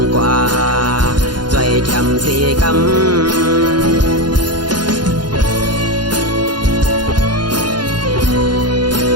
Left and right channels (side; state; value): left; late; 0.71 ms